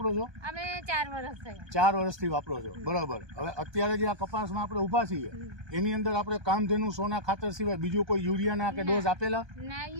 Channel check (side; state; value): left; late; 1.2 ms